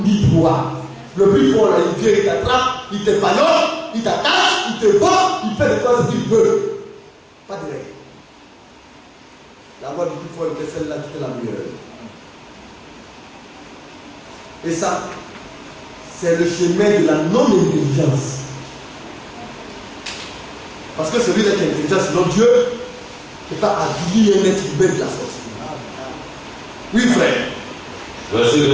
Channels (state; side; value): identical; both; correlation 1.00